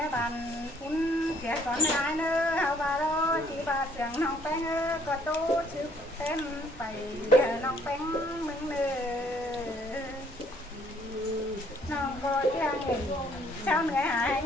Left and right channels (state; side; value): normal; both; correlation 0.63